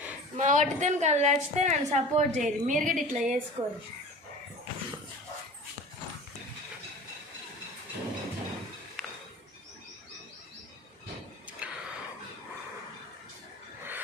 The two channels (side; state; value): both; normal; correlation 0.39